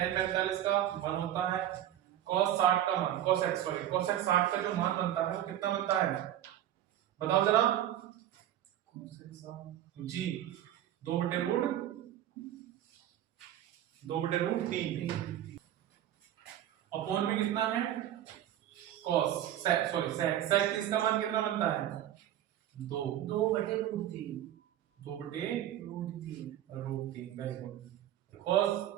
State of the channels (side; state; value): left; quieter; 11.9 dB